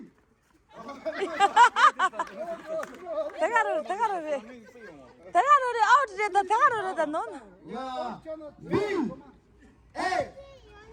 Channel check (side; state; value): both; identical; correlation 1.00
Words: 대가로를 아우트됐다 대가로를 넌 야. B.